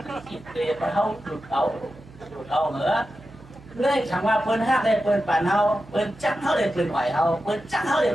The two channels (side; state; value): right; noise; hum, 21 dB below the sound